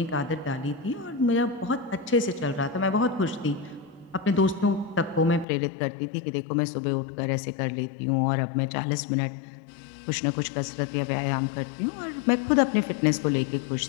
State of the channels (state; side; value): drops out; right; at 5.5 s